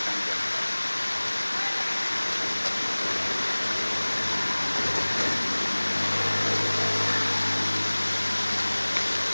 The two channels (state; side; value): inverted; both; correlation -1.00